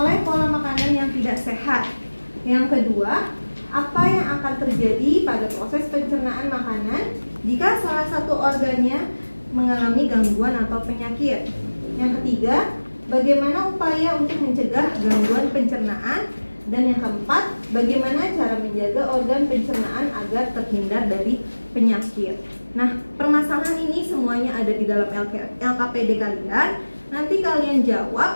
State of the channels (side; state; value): both; inverted; correlation -1.00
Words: pola makanan yang tidak sehat. Yang kedua, apa yang akan terjadi pada proses pencernaan makanan jika salah satu organnya mengalami gangguan atau penyakit. Yang ketiga, bagaimana upaya untuk mencegah gangguan pencernaan. Dan yang keempat, bagaimana cara menjaga organ pencernaan agar terhindar dari penyakit. Nah, permasalahan ini semuanya ada di dalam LKPD kalian. Nanti kalian